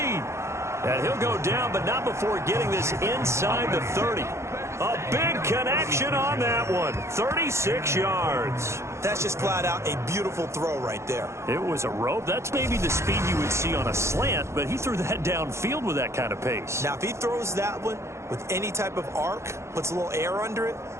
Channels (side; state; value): left; late; 0.13 ms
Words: And he'll go down, but not before getting this inside the 30. A big connection on that one. 36 yards. That's just flat out a beautiful throw right there. It was a rope. That's maybe the speed you would see on a slant, but he threw that downfield with that kind of pace. Now, if he throws that one with any type of arc, puts a little air under it,